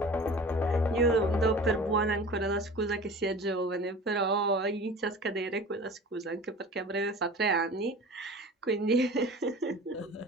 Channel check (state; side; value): normal; both; correlation 0.40